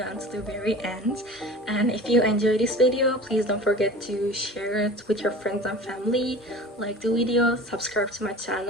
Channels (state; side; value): normal; both; correlation 0.38